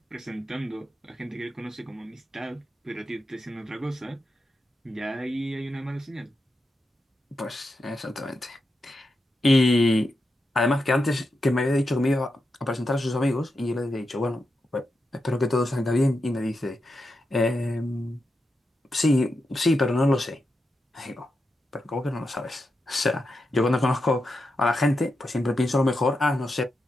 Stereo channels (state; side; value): normal; both; correlation 0.87